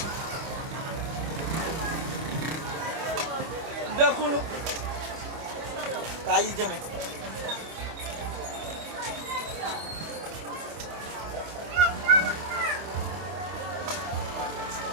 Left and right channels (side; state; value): left; late; 25 ms